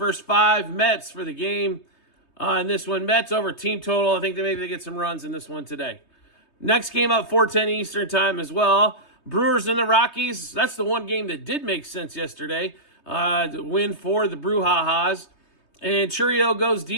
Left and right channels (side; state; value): right; late; 3.2 ms